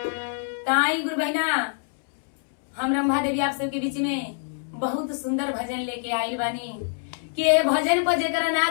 ताई गुरु बहना हम रंभा देवी आप सबके बीच में बहुत सुंदर भजन लेके आई बानी कि ये भजन पर जेकरा ना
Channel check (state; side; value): silent; right; 62 dB below the other